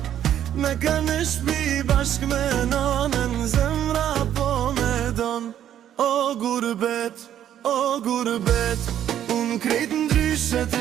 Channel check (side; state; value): left; quieter; 10.6 dB